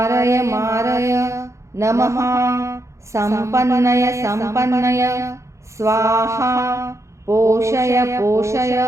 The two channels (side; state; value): left; late; 0.14 ms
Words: नमः संपन्नय स्वाहा पोषय